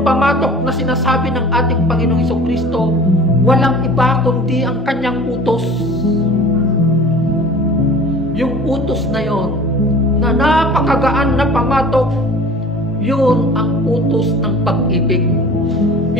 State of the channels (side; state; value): both; normal; correlation 0.43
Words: pamatok na sinasabi ng ating Panginoong Jesucristo, walang iba kundi ang kanyang utos. Yung utos na yon, na napakagaan na pamatok, yun ang utos ng pag-ibig.